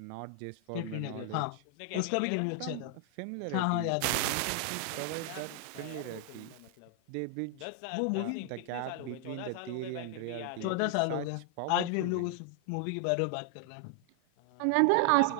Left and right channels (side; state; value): both; different; correlation 0.00